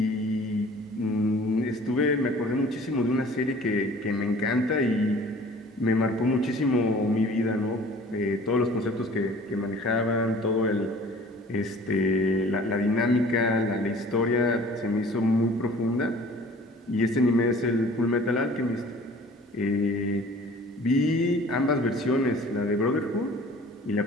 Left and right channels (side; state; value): both; normal; correlation 0.49